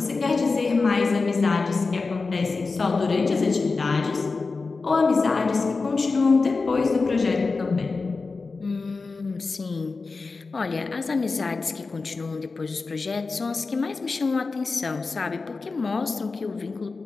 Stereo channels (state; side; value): quieter; right; 4.1 dB